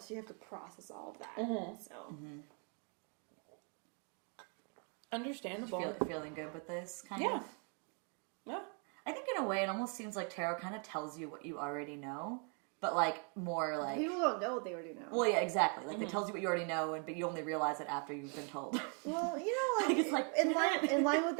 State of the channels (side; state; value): left; quieter; 39.4 dB